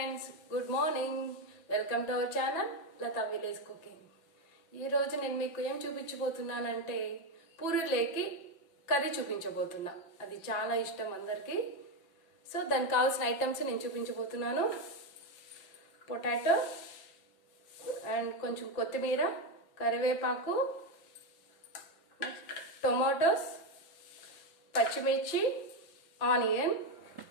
good morning. Welcome to our channel Latha Village Cooking. ఈ రోజు నేను మీకు ఏం చూపించబోతున్నానంటే పూరీలేకి కర్రీ చూపించబోతున్నా. అది చాలా ఇష్టం అందరికి. సో దానికి కావాల్సిన ఐటమ్స్ నేను చూపించబోతున్నాను. పొటాటో అండ్ కొంచెం కొత్తిమీర, కరివేపాకు, టొమాటోస్, పచ్చిమిర్చి, ఆనియన్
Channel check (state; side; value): late; right; 6.0 ms